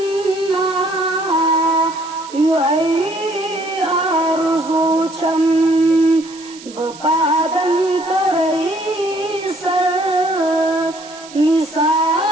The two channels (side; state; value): right; noise; hiss, 18 dB below the sound